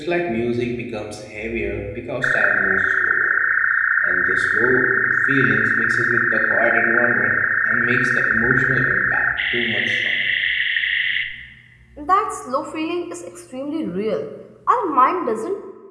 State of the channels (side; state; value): both; identical; correlation 1.00